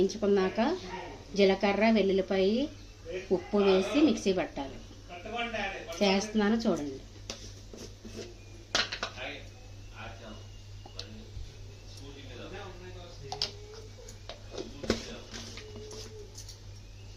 జీలకర్ర, వెల్లుల్లిపాయి, ఉప్పు వేసి మిక్సీ పట్టాలి. చేస్తున్నాను చూడండి.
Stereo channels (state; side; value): identical; both; correlation 1.00